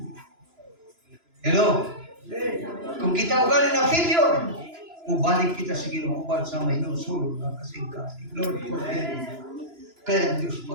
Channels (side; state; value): left; late; 2.9 ms